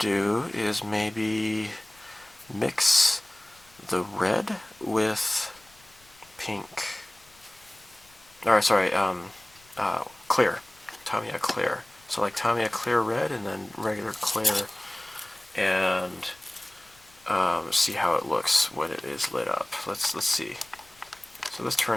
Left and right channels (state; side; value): noise; left; rumble, 29 dB below the sound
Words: is maybe mix the red with pink. Alright, sorry, clear. Tamiya clear. So like Tamiya clear red and then regular clear, and see how it looks when it is lit up. Let's see. So this